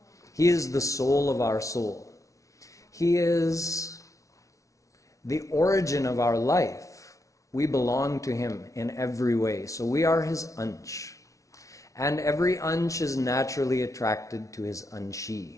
He is the soul of our soul. He is the origin of our life. We belong to him in every way. So we are his ansh. And every ansh is naturally attracted to his anshi.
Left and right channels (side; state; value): right; late; 0.16 ms